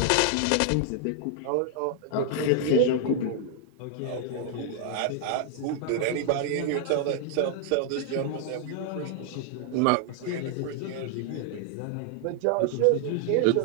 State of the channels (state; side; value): different; both; correlation 0.00